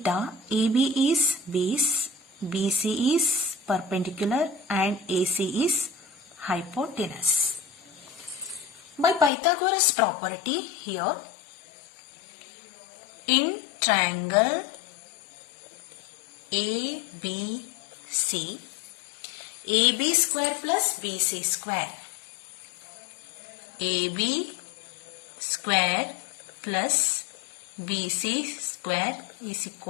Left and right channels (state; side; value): drops out; right; at 9.3 s